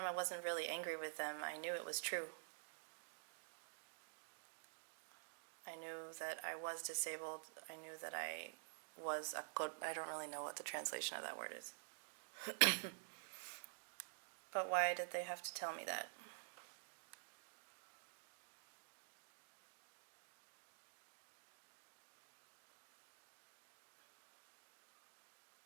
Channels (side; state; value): left; silent; digital silence